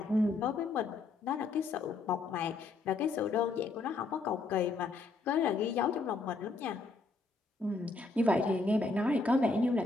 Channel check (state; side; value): quieter; right; 3.6 dB